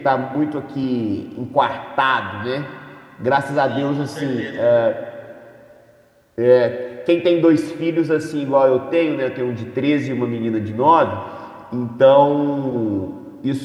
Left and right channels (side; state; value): both; identical; correlation 1.00